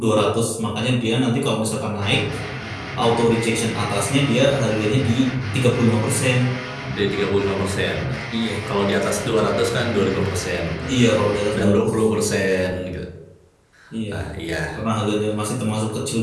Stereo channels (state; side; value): identical; both; correlation 1.00